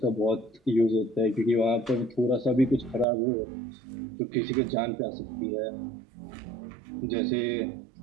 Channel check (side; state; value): left; drops out; at 3.1 s